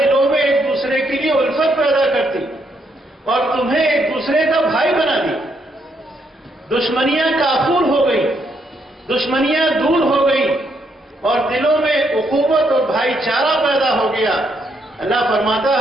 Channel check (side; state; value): both; normal; correlation 0.75